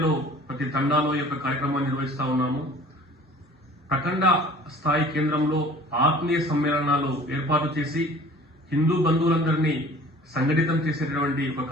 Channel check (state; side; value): normal; both; correlation 0.48